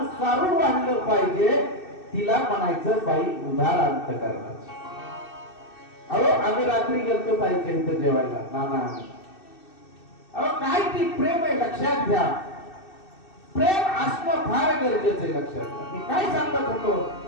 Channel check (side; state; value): right; late; 2.6 ms